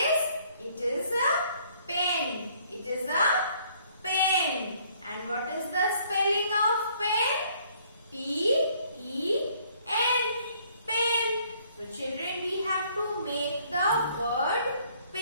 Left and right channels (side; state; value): both; inverted; correlation -0.63